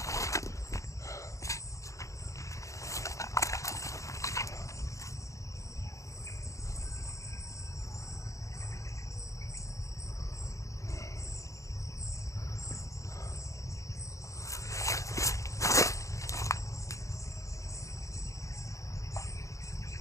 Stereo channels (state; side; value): late; right; 0.15 ms